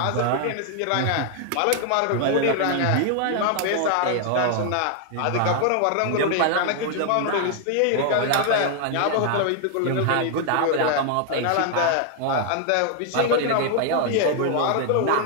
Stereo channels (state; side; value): different; both; correlation 0.00